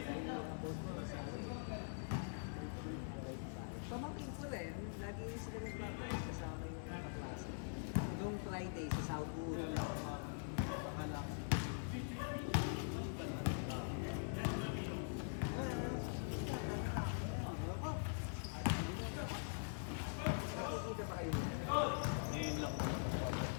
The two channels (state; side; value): silent; right; digital silence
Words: Pamangkin ko rin, lagi sila nagbabalik kasama yung mga klase. Noong Friday sa Southwood. Nakikita ba kayo?